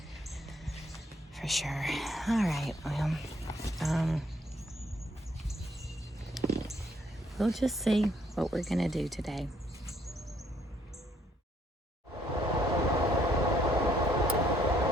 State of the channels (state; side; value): normal; both; correlation 0.68